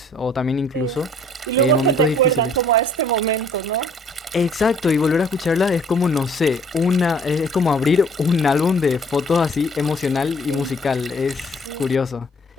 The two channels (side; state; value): both; normal; correlation 0.57